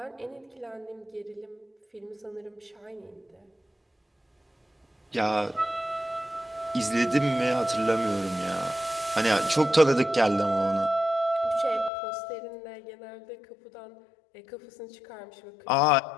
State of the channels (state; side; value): drops out; right; at 11.9 s